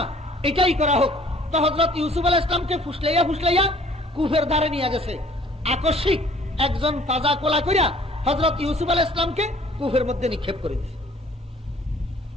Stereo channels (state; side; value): normal; both; correlation 0.55